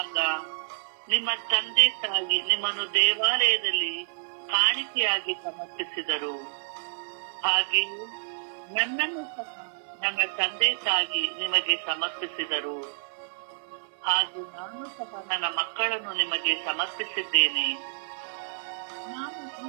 ನಿಮ್ಮ ತಂದೆ ತಾಯಿ ನಿಮ್ಮನ್ನು ದೇವಾಲಯದಲ್ಲಿ ಕಾಣಿಕೆಯಾಗಿ ಸಮರ್ಪಿಸಿದರು. ಹಾಗೆಯೇ ನನ್ನನ್ನು ಸಹ ನನ್ನ ತಂದೆ ತಾಯಿ ನಿಮಗೆ ಸಮರ್ಪಿಸಿದರು. ಹಾಗೆ ನಾನು ಸಹ ನನ್ನ ಮಕ್ಕಳನ್ನು ನಿಮಗೆ ಸಮರ್ಪಿಸಿದ್ದೇನೆ. ನಾನು ಈ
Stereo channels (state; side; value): silent; left; digital silence